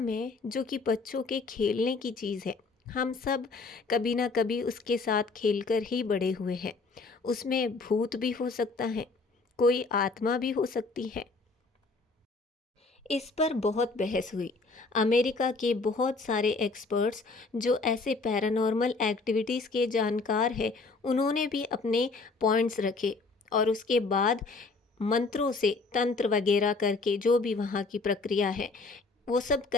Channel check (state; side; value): quieter; right; 3.8 dB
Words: जो कि बच्चों के खेलने की चीज़ है, हम सब कभी ना कभी उसके साथ खेलकर ही बड़े हुए हैं, उसमें भूत भी हो सकता है, कोई आत्मा भी हो सकती है? इस पर बहुत बहस हुई। अमेरिका के बहुत सारे एक्सपर्ट्स जो ऐसे पैरानॉर्मल एक्टिविटीज़ के जानकार हैं, उन्होंने भी अपने पॉइंट्स रखे। और उसके बाद मंत्रों से, तंत्र वगैरह करके, जो भी वहाँ की प्रक्रिया है, वो सब